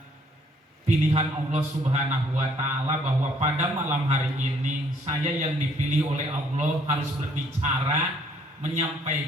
pilihan Allah Subhanahu wa Ta'ala bahwa pada malam hari ini saya yang dipilih oleh Allah harus berbicara,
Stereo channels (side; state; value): both; normal; correlation 0.64